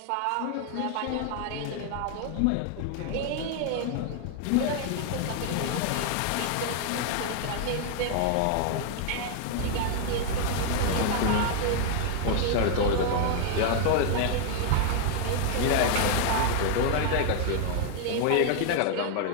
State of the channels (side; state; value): both; different; correlation 0.00